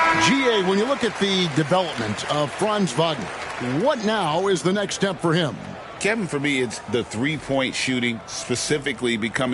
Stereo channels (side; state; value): both; identical; correlation 1.00